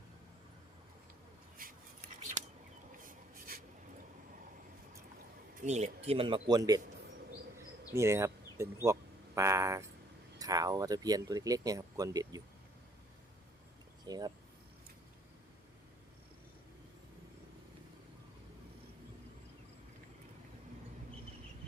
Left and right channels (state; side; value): normal; both; correlation 0.63